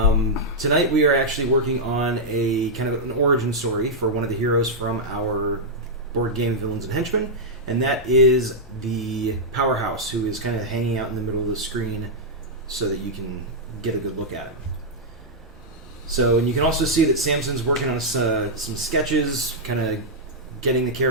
we are actually working on a kind of an origin story for one of the heroes from our board game Villains and Henchmen. And that is the Powerhouse, who is kind of hanging out in the middle of the screen so that you can get a good look at him. So, and you can also see that Samson's working on some sketches, kind of getting the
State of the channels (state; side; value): normal; both; correlation -0.06